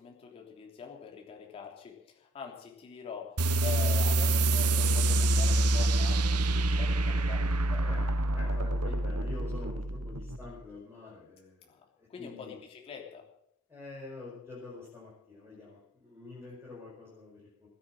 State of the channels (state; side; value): normal; both; correlation 0.74